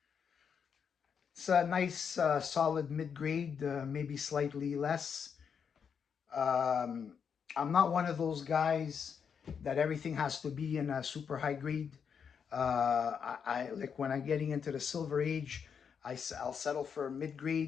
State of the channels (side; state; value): right; quieter; 6.9 dB